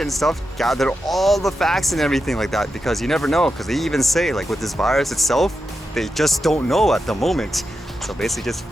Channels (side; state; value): both; normal; correlation 0.89